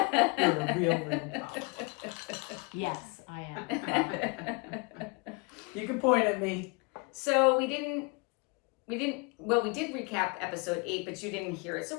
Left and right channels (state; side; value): quieter; right; 29.9 dB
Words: a real problem. Yes, I am. You can point at me. So we did recap episode 8, but you didn't hear it. So